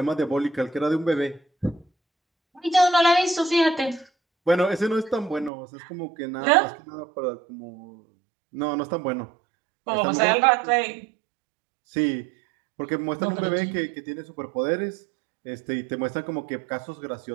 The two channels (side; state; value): left; drops out; at 5.5 s